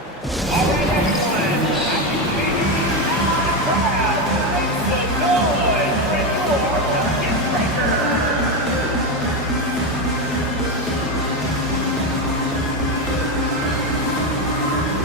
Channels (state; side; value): normal; both; correlation 0.12